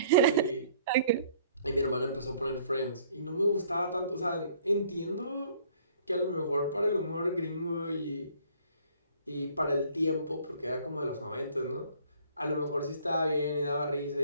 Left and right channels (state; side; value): inverted; both; correlation -0.58